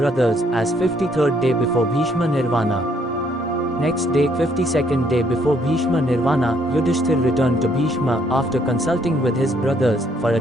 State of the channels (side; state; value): both; normal; correlation 0.68